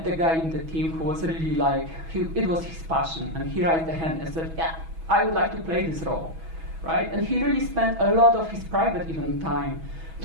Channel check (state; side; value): late; left; 6.2 ms